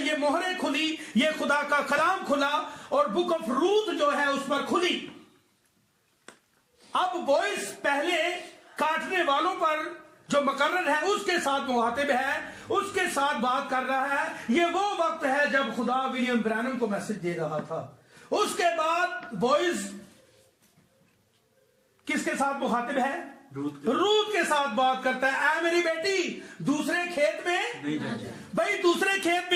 یہ مہریں کھلی، یہ خدا کا کلام کھلا، اور بک آف روت جو ہے اس پر کھلی۔ اب بوئز پہلے کاٹنے والوں پر جو مقرر ہے اس کے ساتھ مخاطب ہے، اس کے ساتھ بات کر رہا ہے۔ یہ وہ وقت ہے جب خدا ولیم برینم کو میسج دے رہا تھا۔ اس کے بعد بوئز کس کے ساتھ مخاطب ہے؟ روت کے ساتھ بات کرتا ہے، اے میری بیٹی دوسرے کھیت میں نہیں جائے۔ بھائی دوسرے کھیت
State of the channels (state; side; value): identical; both; correlation 1.00